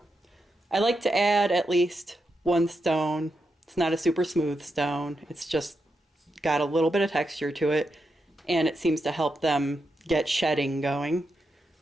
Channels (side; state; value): both; normal; correlation 0.85